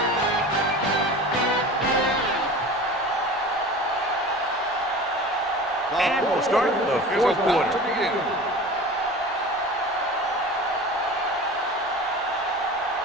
And we'll start the fourth quarter.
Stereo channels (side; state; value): both; normal; correlation 0.36